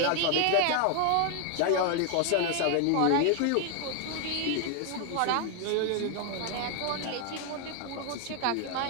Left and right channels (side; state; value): both; different; correlation 0.01